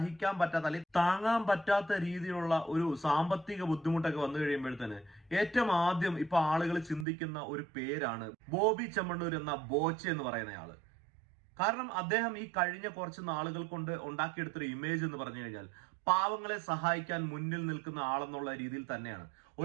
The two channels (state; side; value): drops out; left; at 7.1 s